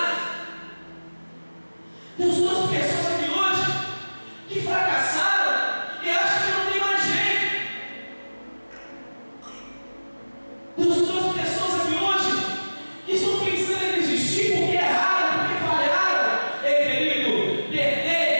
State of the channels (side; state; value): both; inverted; correlation -1.00